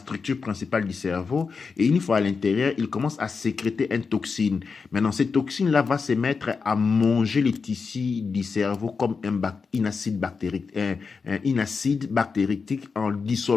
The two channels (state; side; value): quieter; right; 5.0 dB